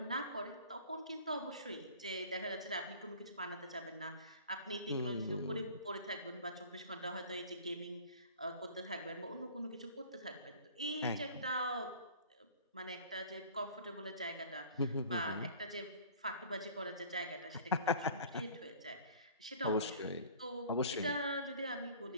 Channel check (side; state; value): both; inverted; correlation -0.46